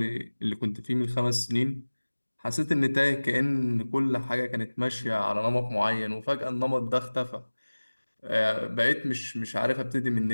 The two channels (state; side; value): inverted; both; correlation -1.00